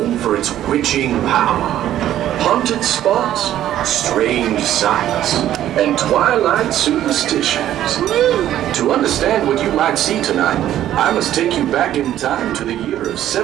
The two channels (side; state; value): left; quieter; 12.1 dB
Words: for its witching power, haunted spots, strange sights, and twilight superstitions. To understand what you might see tonight, I must take you back in time to the year of